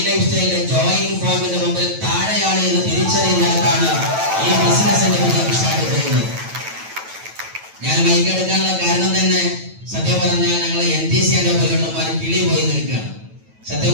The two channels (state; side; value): late; left; 9.1 ms